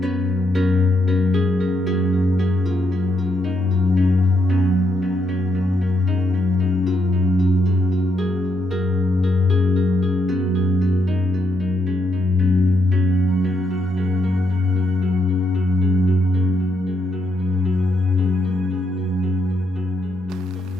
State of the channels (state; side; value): normal; both; correlation 0.78